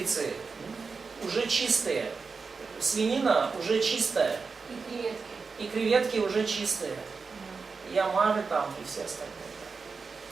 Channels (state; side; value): quieter; left; 4.8 dB